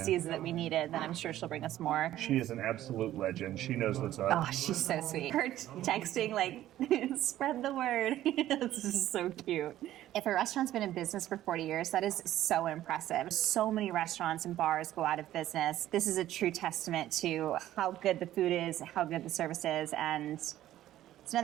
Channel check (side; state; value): left; quieter; 13.4 dB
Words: sees that we need it, then I'm sure she'll bring us more. She is an absolute legend. She knows what's up. Oh, she's so sweet. Her texting, like, spread the word. This is so cute. If a restaurant's been in business for 40 years, that is so impressive. So many restaurants and bars go out of business. This is a true testament to how good the food is, how good the service is, and it's